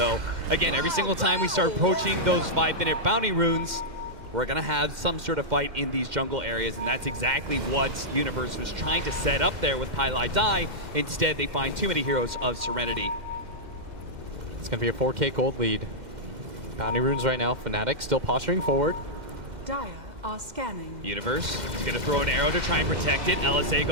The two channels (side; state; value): left; late; 1.8 ms